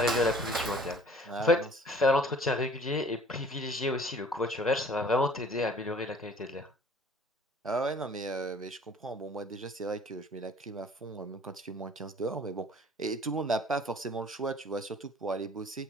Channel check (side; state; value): both; normal; correlation 0.52